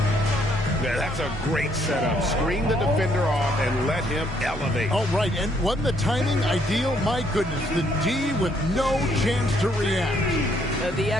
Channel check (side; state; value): both; normal; correlation 0.69